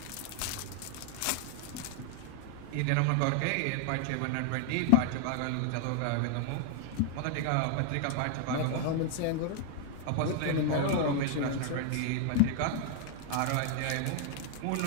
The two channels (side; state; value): both; different; correlation 0.00